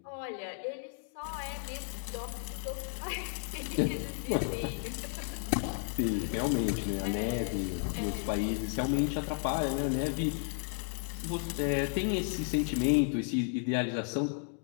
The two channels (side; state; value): right; silent; 56 dB below the other